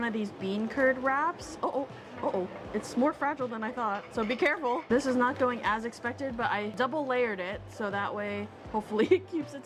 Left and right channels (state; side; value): identical; both; correlation 1.00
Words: of these bean curd wraps. Uh-oh, it's more fragile than I thought, so be careful. This is not going as expected, but I double layered it, so that way, hopefully it keeps it